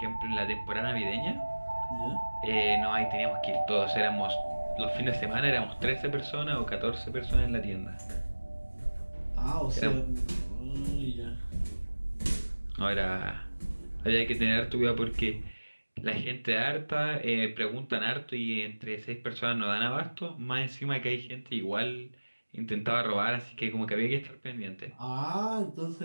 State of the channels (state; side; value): inverted; both; correlation -1.00